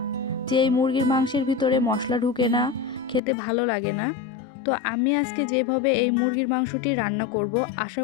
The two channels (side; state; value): right; drops out; at 3.2 s